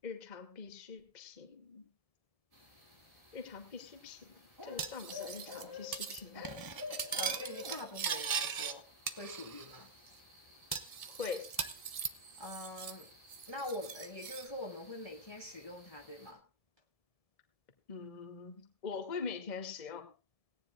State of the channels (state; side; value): late; right; 1.7 ms